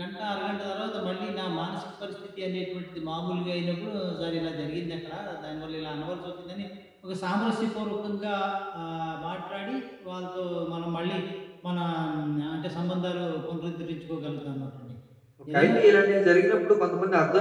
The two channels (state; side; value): identical; both; correlation 1.00